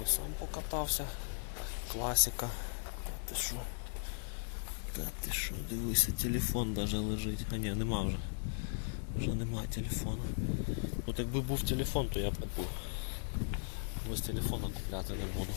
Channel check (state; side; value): silent; right; 53 dB below the other